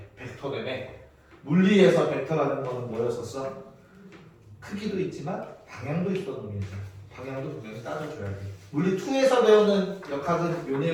벡터되네. 물리에서 벡터라는 거는 뭐였었어? 크기도 있지만 방향도 있었던 놈이지. 방향도 분명히 따져줘야 돼. 물리 2에서 배우는 역학은 요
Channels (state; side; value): identical; both; correlation 1.00